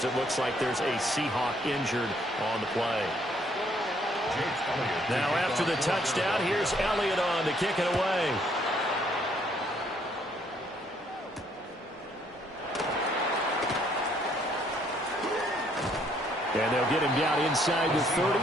it looks like there's a Seahawk injured on the play. Now after the touchdown, here's Elliott on to kick it away. And they'll get him down inside the 30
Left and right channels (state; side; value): normal; both; correlation 0.67